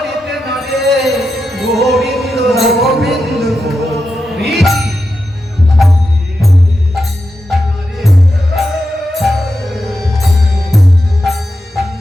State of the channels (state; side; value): normal; both; correlation 0.88